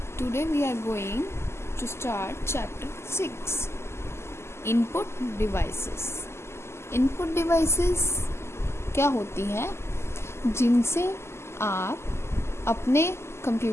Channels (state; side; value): late; right; 0.13 ms